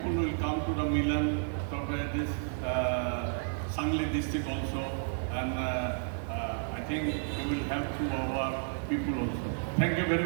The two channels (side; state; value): left; silent; digital silence